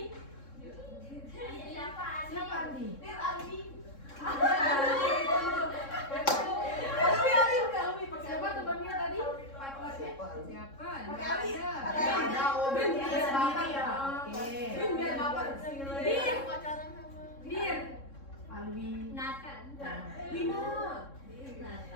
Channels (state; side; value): late; right; 3.7 ms